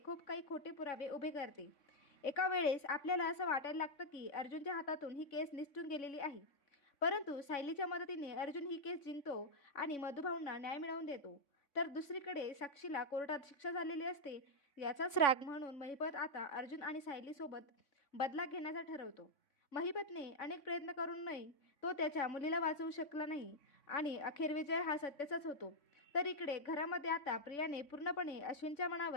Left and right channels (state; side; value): late; right; 3.5 ms